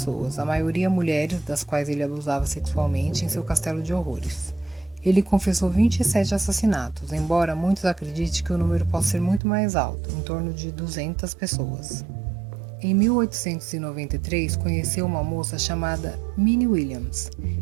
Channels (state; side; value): drops out; left; at 9.4 s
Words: a maioria mulheres, das quais ele abusava sexualmente, em seu castelo de horrores. Ele confessou 27 assassinatos, embora muitos acreditem que o número possa ser muito mais alto, em torno de 200 pessoas. Em 1893, conheceu uma moça chamada Minnie Williams,